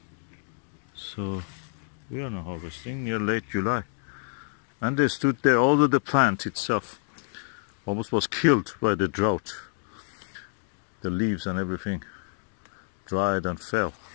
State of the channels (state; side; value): silent; right; digital silence